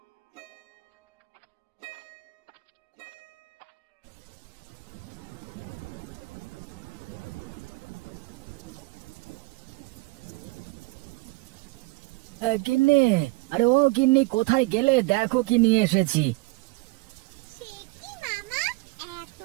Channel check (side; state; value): left; quieter; 23.1 dB